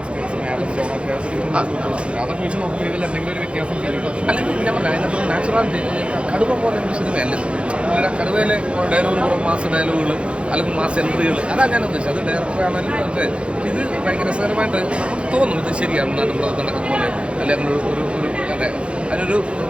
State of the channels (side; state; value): left; late; 0.058 ms